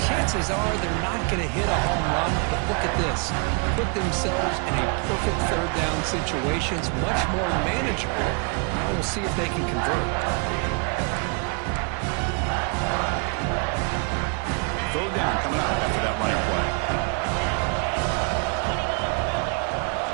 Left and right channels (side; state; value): left; quieter; 34.8 dB